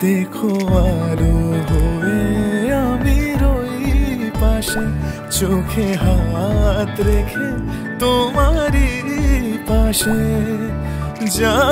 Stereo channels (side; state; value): both; identical; correlation 1.00